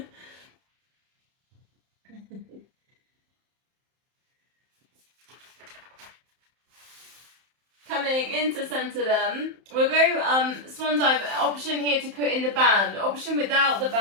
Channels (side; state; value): left; late; 31 ms